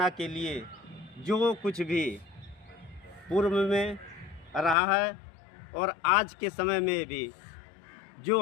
के लिए जो कुछ भी पूर्व में रहा है और आज के समय में भी जो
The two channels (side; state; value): right; drops out; at 4.8 s